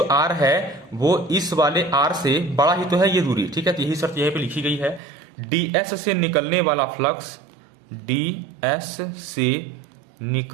R है वो इस वाले R से बड़ा ही तो है ये दूरी, ठीक है, तो यही शर्त यहीं पे लिखी गई है। ds से निकलने वाला फ्लक्स, ds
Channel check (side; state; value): left; drops out; at 5.0 s